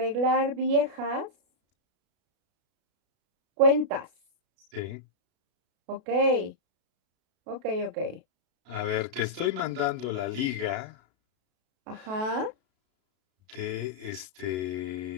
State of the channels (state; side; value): late; left; 32 ms